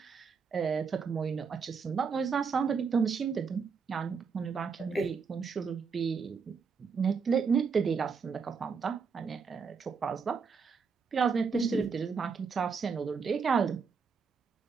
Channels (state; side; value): quieter; left; 5.6 dB